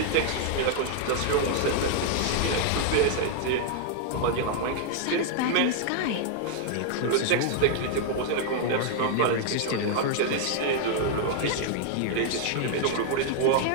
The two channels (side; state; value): both; different; correlation 0.00